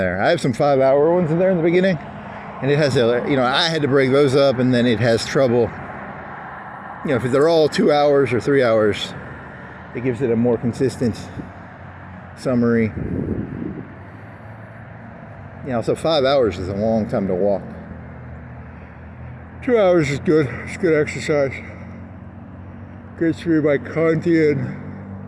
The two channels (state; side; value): identical; both; correlation 1.00